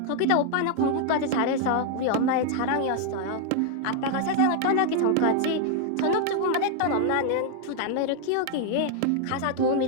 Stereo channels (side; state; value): both; different; correlation 0.00